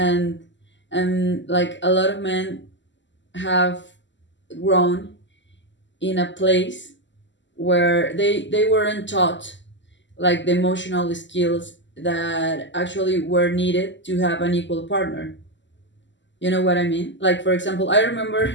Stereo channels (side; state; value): right; late; 0.54 ms